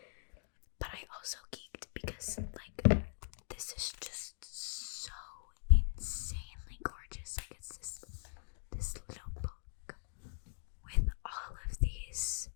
But I also geeked because like this is just so insanely gorgeous. Like it's this little book with all of these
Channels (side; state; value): right; silent; digital silence